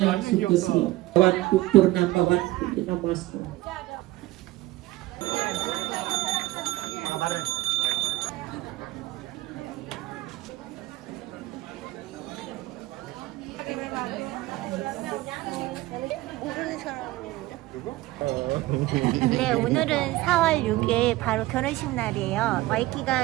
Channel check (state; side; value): quieter; left; 17.9 dB